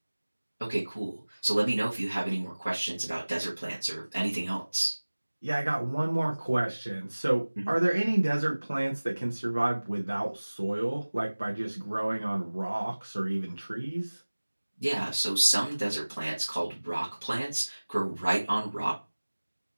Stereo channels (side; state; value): both; inverted; correlation -1.00